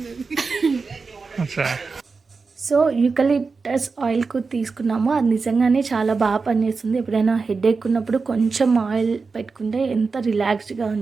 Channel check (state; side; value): quieter; left; 4.5 dB